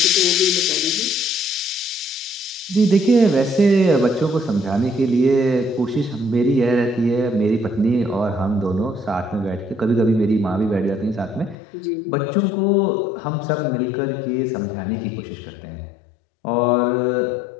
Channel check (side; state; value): right; drops out; at 11.6 s